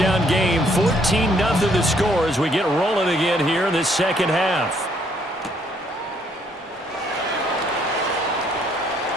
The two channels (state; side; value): normal; both; correlation 0.67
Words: game, 14-0 the score as we get rolling again here in this second half.